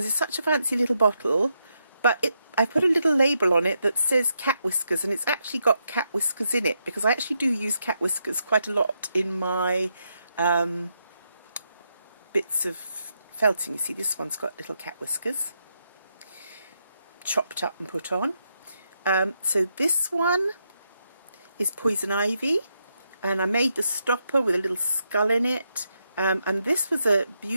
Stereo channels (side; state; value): both; inverted; correlation -0.81